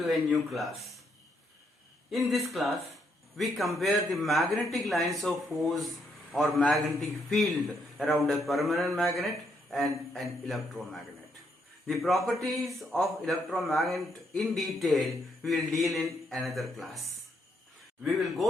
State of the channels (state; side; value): normal; both; correlation 0.75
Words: a new class. In this class, we compare the magnetic lines of force or magnetic field around a permanent magnet and an electromagnet. The properties of electromagnet in detail we will deal in another class. We will